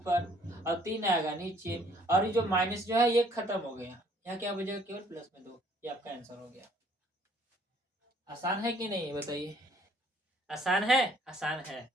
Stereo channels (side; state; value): both; normal; correlation 0.60